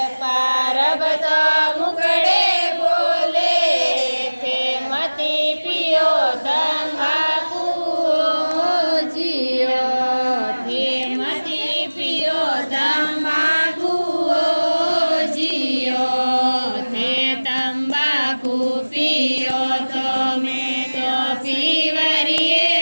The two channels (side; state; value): both; inverted; correlation -1.00